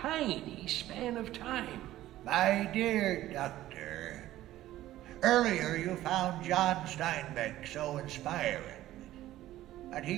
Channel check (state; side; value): quieter; left; 14.6 dB